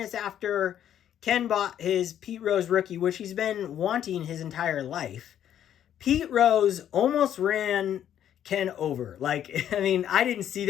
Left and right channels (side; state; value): right; quieter; 10.3 dB